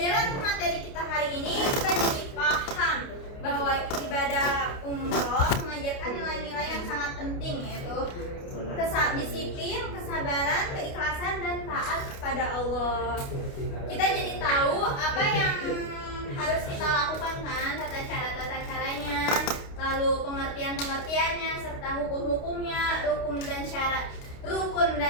materi kita hari ini kita jadi paham bahwa ibadah umroh mengajarkan nilai-nilai yang sangat penting, yaitu disiplin, kesabaran, keikhlasan, dan taat kepada Allah. Kita jadi tahu apa yang harus kita lakukan kan, tata caranya, lalu pengertiannya, serta hukum-hukumnya, rukun dan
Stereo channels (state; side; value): late; right; 29 ms